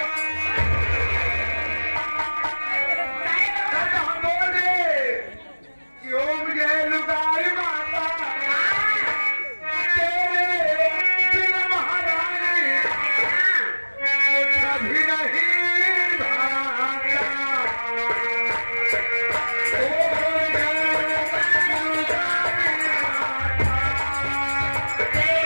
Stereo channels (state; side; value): inverted; both; correlation -1.00